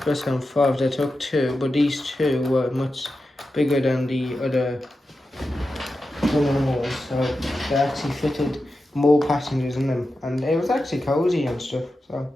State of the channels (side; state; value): both; normal; correlation 0.91